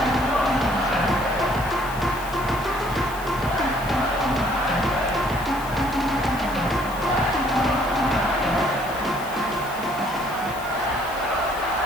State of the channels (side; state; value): left; noise; hiss, 17 dB below the sound